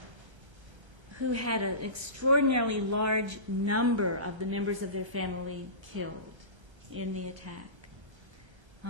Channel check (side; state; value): left; late; 1.3 ms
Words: who had an extraordinarily large number of the members of their family killed in the attack.